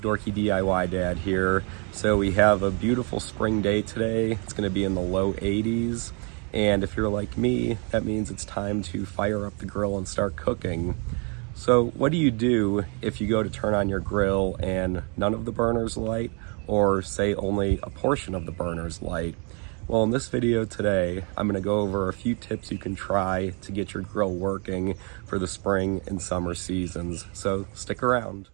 DIY Dad here. So we have a beautiful spring day today. It's going to be in the low 80s. And if you're like me, that means it's time to fire up the grill and start cooking. So what do you do if you go to turn on your grill and none of the burners light, or say only a portion of the burners light? Well, in this video today, I'm going to go over a few tips you can try to get your grill working for the spring and summer seasons. So stick around.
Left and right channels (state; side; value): quieter; left; 35.7 dB